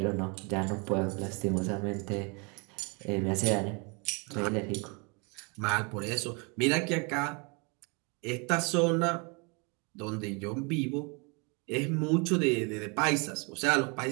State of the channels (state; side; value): quieter; left; 32.0 dB